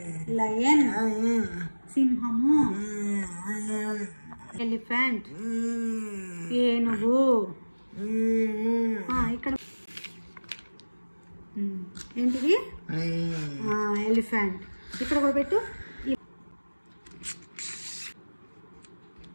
lion. సింహము. ఎలిఫెంట్, ఏనుగు. ఇక్కడ ఏంటిది? ఎలిఫెంట్. ఇక్కడ కూడా పెట్టు.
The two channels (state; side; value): inverted; both; correlation -1.00